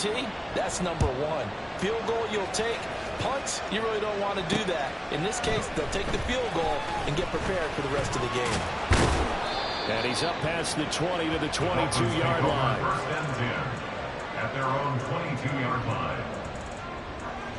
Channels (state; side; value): identical; both; correlation 1.00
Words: that's number 1. Field goal you'll take. Punts, you really don't want to do that. In this case, they'll take the field goal and get prepared for the rest of the game. And he's up past the 20 to the 22-yard line. First and 10 at their own 22-yard line.